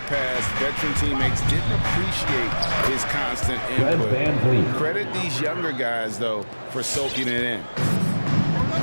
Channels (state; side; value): inverted; both; correlation -1.00